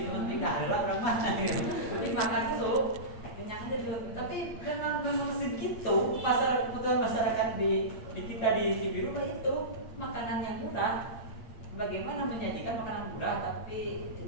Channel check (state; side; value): late; right; 8.6 ms